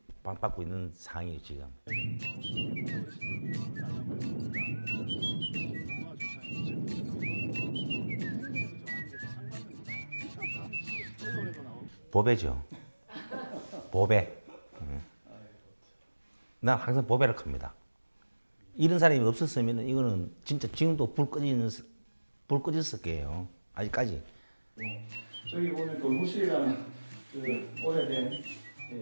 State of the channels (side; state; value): both; inverted; correlation -1.00